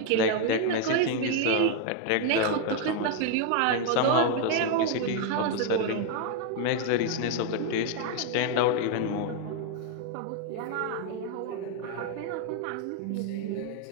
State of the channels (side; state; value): both; different; correlation 0.00